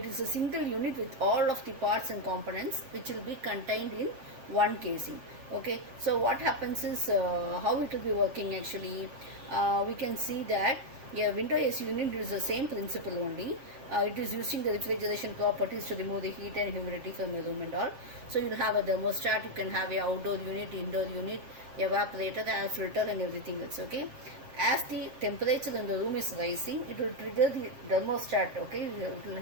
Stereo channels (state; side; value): late; left; 7.5 ms